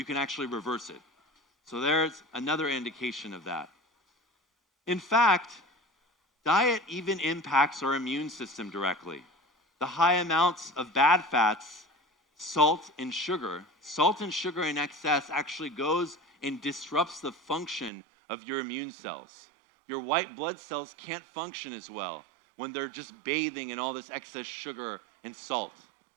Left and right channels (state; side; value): drops out; left; at 17.9 s